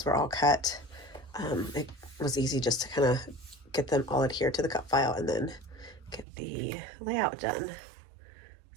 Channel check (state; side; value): drops out; left; at 6.2 s